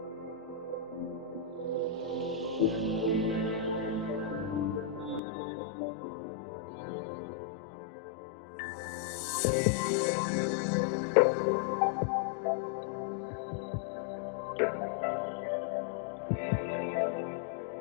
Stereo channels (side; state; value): right; drops out; at 5.2 s